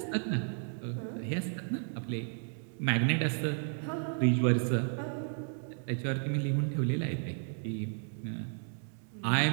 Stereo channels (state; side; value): silent; left; 56 dB below the other